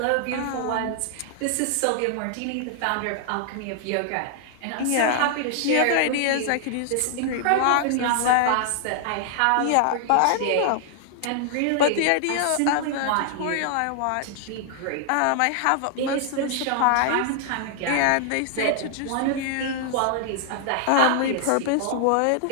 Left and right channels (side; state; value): both; different; correlation 0.00